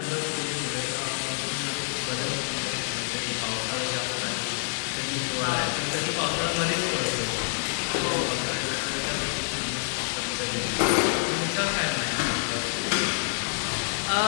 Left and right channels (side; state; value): right; silent; digital silence